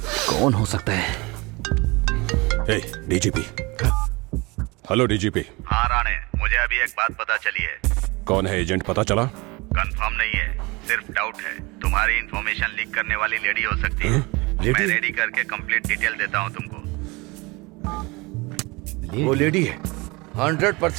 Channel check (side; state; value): left; quieter; 25.2 dB